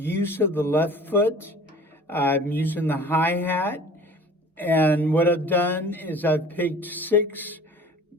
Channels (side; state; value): both; normal; correlation 0.45